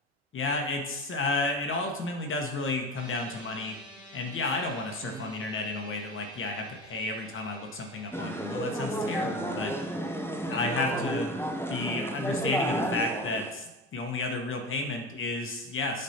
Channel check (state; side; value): normal; both; correlation 0.29